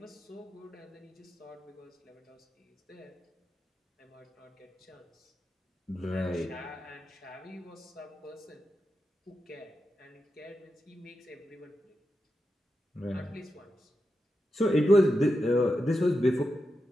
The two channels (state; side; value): normal; both; correlation 0.89